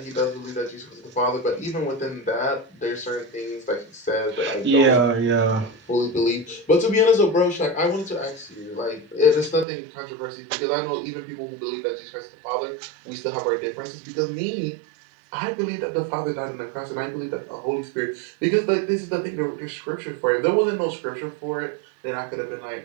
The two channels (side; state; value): left; drops out; at 9.7 s